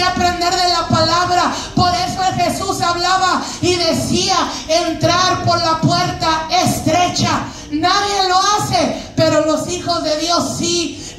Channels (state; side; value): identical; both; correlation 1.00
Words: aprender de la palabra. Por eso Jesús hablaba y decía: entrar por la puerta estrecha. Nadie lo hace, pero los hijos de Dios sí.